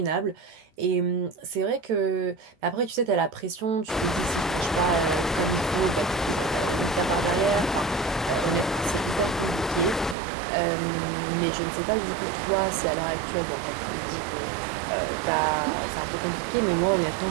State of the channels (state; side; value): drops out; left; at 10.2 s